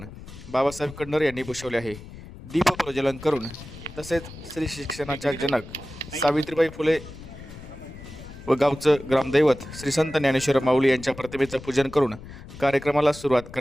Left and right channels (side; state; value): left; noise; rumble, 15 dB below the sound